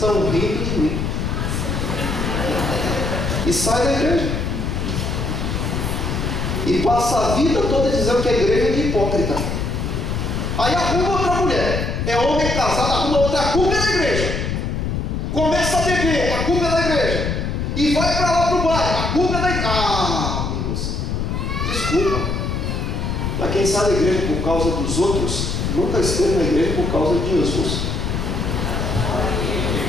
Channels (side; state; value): left; noise; rumble, 1 dB below the sound